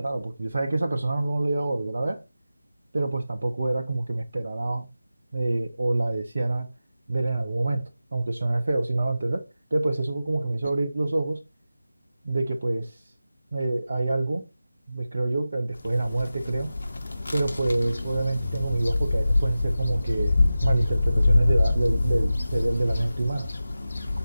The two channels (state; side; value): inverted; both; correlation -0.94